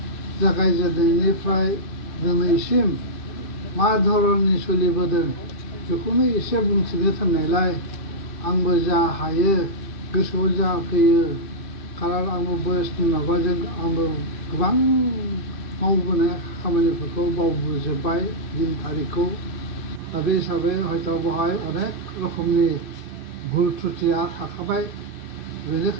जागायजेननायनिफ्राय दिनैसिम मा धरननि सोलिबोदों बेखौनो एसे बुंथिनो थिननायलाय आंबो जा हायो गोसोआव जा फैयो, खारन आंबो बयसनि माबाजों आंबो गोबां मावबोनाय खामानिफोरखौ बावबोजोब्बाय दिन थारिखखौ। दा बे हिसाबै हयथ' बेवहाय अनेक रोखोमनि भुल त्रुटिया थाखाबाय।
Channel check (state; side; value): late; right; 2.7 ms